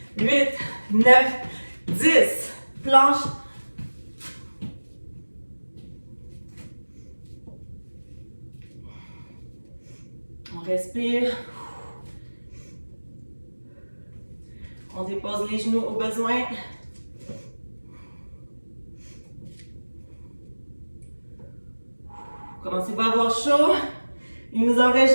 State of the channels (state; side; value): inverted; both; correlation -1.00